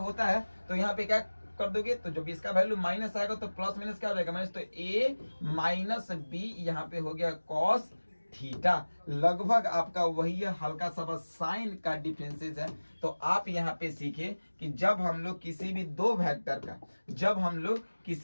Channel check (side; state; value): both; inverted; correlation -1.00